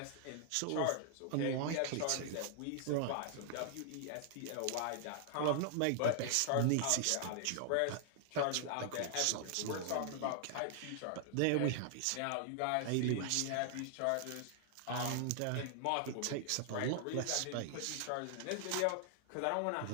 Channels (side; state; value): both; different; correlation -0.01